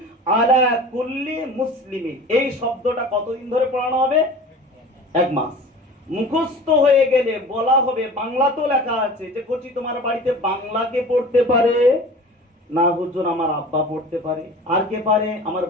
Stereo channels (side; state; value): both; normal; correlation 0.40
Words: আলা কুল্লি মুসলিমিন, এই শব্দটা কতদিন ধরে পড়ানো হবে? 1 মাস। মুখস্থ হয়ে গেলে বলা হবে, বাংলা তো লেখা আছে যে কোচি তোমার বাড়িতে বাংলাকে পড়তে পারে না? হুজুর আমার আব্বা পড়তে পারে। আর কে পারে? আমার